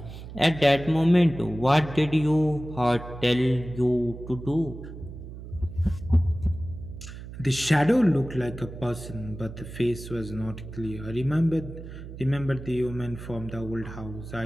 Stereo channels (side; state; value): right; noise; hum, 12 dB below the sound